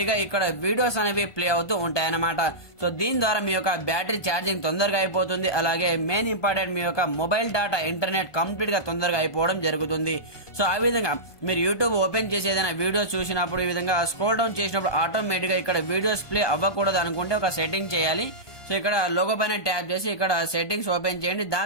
గా ఇక్కడ వీడియోస్ అనేవి ప్లే అవుతూ ఉంటాయి అన్నమాట. సో దీని ద్వారా మీ యొక్క బ్యాటరీ ఛార్జింగ్ తొందరగా అయిపోతుంది. అలాగే మెయిన్ ఇంపార్టెంట్, మీ యొక్క మొబైల్ డేటా ఇంటర్నెట్ కంప్లీట్ గా తొందరగా అయిపోవడం జరుగుతుంది. సో ఆ విధంగా మీరు యూట్యూబ్ ఓపెన్ చేసి ఏదైనా వీడియోస్ చూసినప్పుడు ఈ విధంగా స్క్రోల్ డౌన్ చేసినప్పుడు ఆటోమేటిక్ గా ఇక్కడ వీడియోస్ ప్లే అవ్వకూడదు అనుకుంటే ఒక సెట్టింగ్ చేయాలి. సో ఇక్కడ లోగో పైన ట్యాప్ చేసి ఇక్కడ సెట్టింగ్స్ ఓపెన్ చేయండి.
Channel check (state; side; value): late; right; 1.2 ms